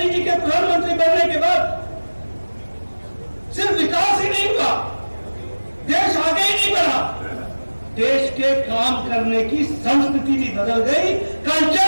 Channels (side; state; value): both; inverted; correlation -1.00